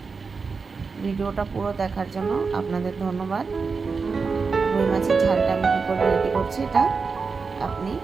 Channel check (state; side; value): quieter; left; 4.8 dB